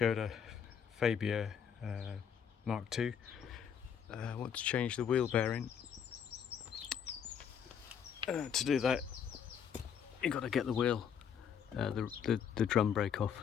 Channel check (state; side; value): quieter; right; 7.8 dB